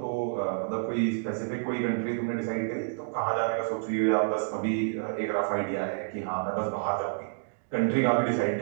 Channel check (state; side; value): silent; left; digital silence